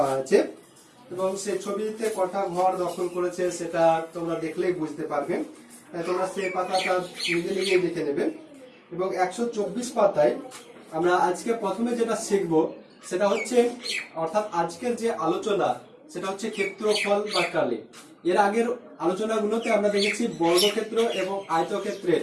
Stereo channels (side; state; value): both; identical; correlation 1.00